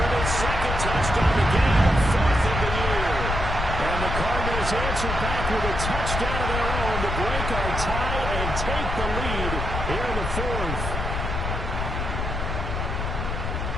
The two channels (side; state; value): left; noise; rumble, 3 dB below the sound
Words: his 2nd touchdown of the game, 4th of the year. And the Cardinals answer back with a touchdown of their own to break our tie and take the lead here in the 4th.